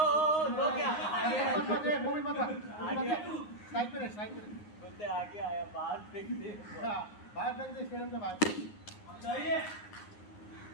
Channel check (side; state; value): right; late; 9.7 ms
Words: लो क्या? मोमिन मत साइड पे रहे। बोलते आगे आया बाहर फेंक दे। बाहर फेंक दे स्टेडियम के बाहर। चाहिए।